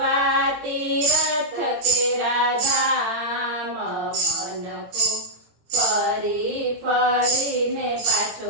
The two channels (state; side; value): late; left; 18 ms